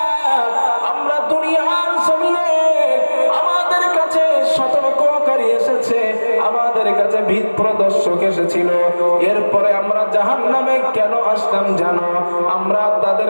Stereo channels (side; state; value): both; inverted; correlation -1.00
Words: আমরা দুনিয়ার জমিনে আমাদের কাছে সতর্ককারী এসেছে, আমাদের কাছে ভীত প্রদর্শক এসেছিল, এরপরে আমরা জাহান্নামে কেন আসলাম জানো? আমরা তাদের